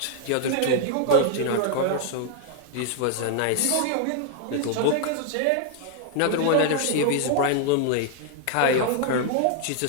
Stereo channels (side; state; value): both; different; correlation 0.00